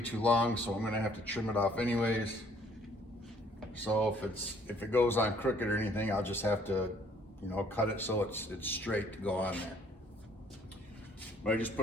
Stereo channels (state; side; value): normal; both; correlation 0.61